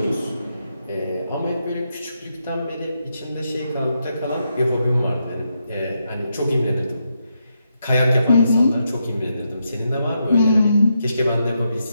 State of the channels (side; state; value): both; inverted; correlation -0.83